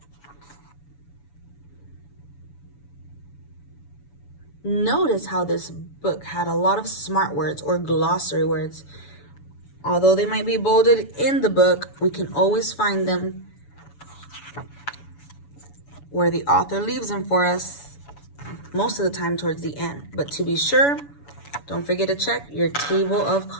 Notice how this book had a lot of smart words or glossary words. Although they might be bolded in the book, we can always find them where the author leaves them for us, most of the time towards the end. But to be sure, don't forget to check your table of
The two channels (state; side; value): late; right; 7.0 ms